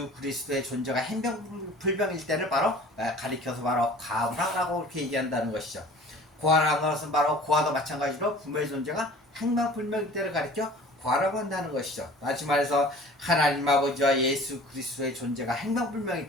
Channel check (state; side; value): normal; both; correlation 0.45